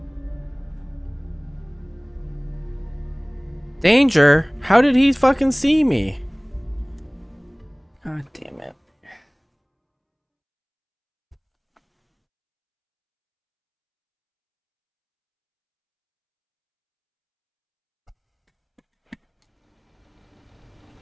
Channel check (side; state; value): both; identical; correlation 1.00